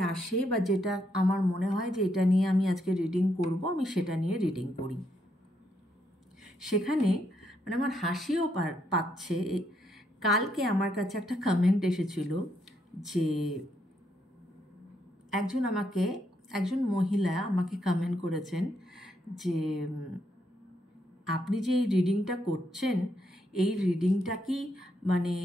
আসে বা যেটা আমার মনে হয় যে এটা নিয়ে আমি আজকে রিডিং করব, আমি সেটা নিয়ে রিডিং করি। সেখানে মানে আমার হাসিও পাচ্ছে। কালকে আমার কাছে একটা কমেন্ট এসেছিল যে একজন মহিলা আমাকে কমেন্ট করেছেন যে আপনি যে এই রিডিংটা করছেন, এই রিডিংটা কি মানে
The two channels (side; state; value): both; normal; correlation 0.77